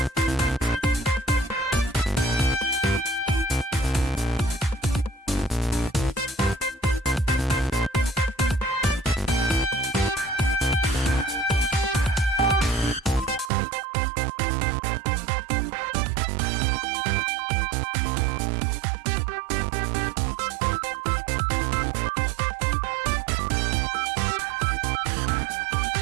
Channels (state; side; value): drops out; left; at 13.5 s